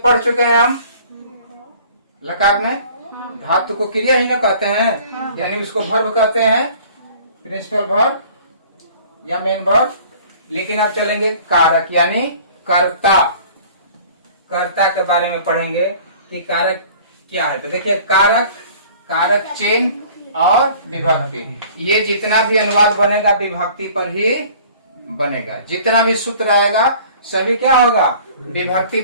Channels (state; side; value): inverted; both; correlation -0.50